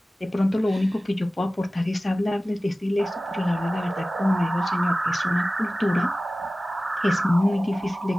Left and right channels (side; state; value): both; normal; correlation 0.97